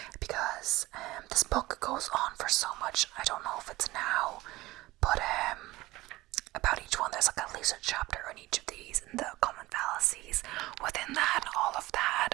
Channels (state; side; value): quieter; left; 18.7 dB